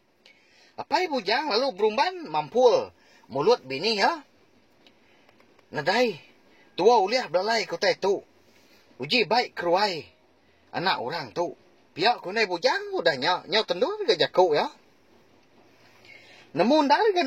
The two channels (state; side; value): identical; both; correlation 1.00